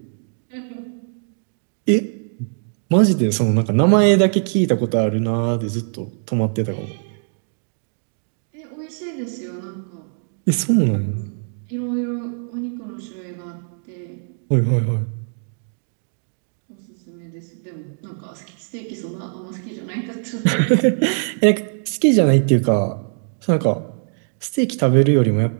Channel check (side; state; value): left; silent; digital silence